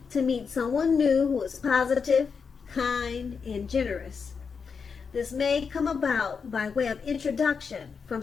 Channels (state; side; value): quieter; right; 5.7 dB